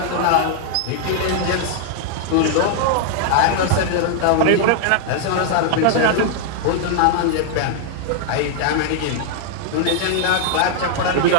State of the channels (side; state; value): both; different; correlation -0.01